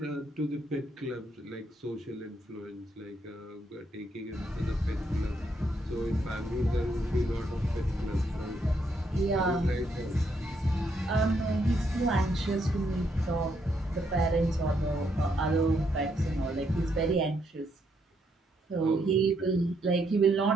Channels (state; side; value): normal; both; correlation 0.75